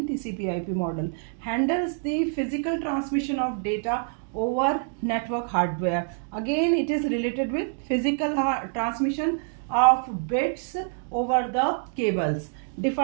TCP IP model. Handles the physical transmission of data over network hardware. Again, it is related with physical transmission of bits over the cables.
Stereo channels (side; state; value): left; silent; 57 dB below the other